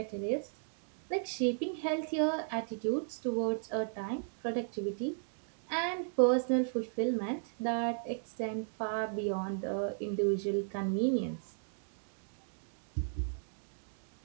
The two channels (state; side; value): silent; left; digital silence